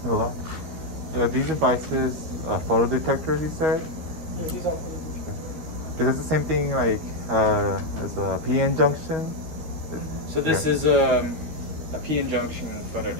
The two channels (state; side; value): late; left; 12 ms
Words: Hello. These devices, photo detectors, you said? Yeah, these are for the Is this the same thing like as a PN junction? So this is a PN junction photo